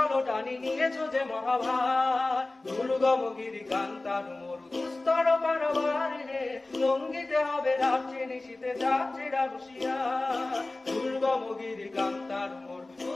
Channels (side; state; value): right; quieter; 3.0 dB